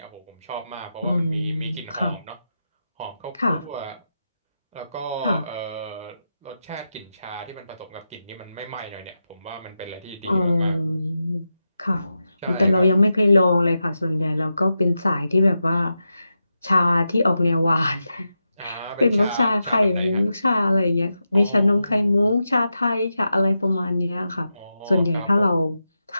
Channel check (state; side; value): inverted; both; correlation -0.89